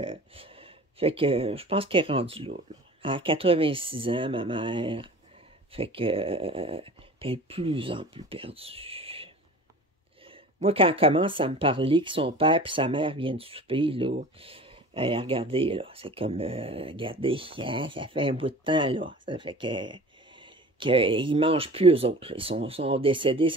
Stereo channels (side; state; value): both; normal; correlation 0.41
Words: fait que je pense qu'elle est rendue là, là. À 86 ans, ma mère. Fait que elle est de plus en plus perdue. Moi, quand elle commence à me parler que son père et sa mère viennent souper, là, regardez, là, c'est comme, regardez, hein, ça fait un bout de temps, là. Ça fait qu'ils mangent plus eux autres. Ils sont décédés,